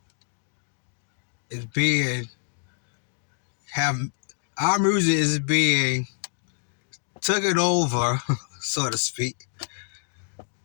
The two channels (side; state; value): right; silent; digital silence